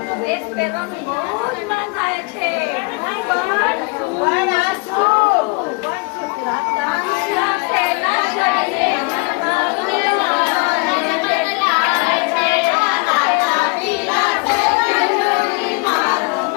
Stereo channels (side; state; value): right; quieter; 30.1 dB